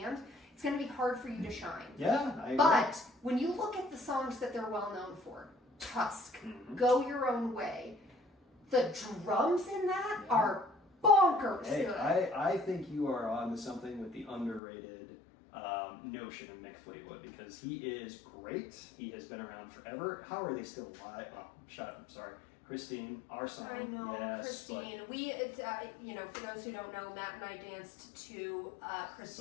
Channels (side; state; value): right; drops out; at 14.6 s